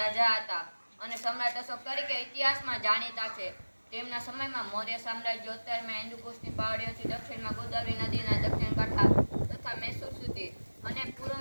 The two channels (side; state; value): both; inverted; correlation -1.00